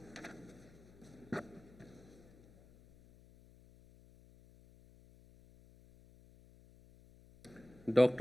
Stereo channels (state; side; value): noise; left; hum, 24 dB below the sound